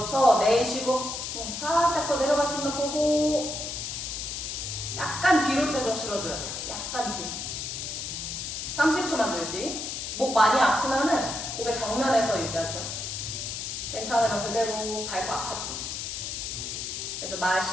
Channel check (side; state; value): left; noise; hiss, 5 dB below the sound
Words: 내쉬고 살짝 더 내려갈 수 있나 보고 약간 뒤로 체중 실어줘야 돼요. 약간 뒤로. 30초만 더 유지. 목 많이 아프면은 고개 정면에서 유지하세요. 괜찮으면 그대로 발 꽉 잡고. 그래서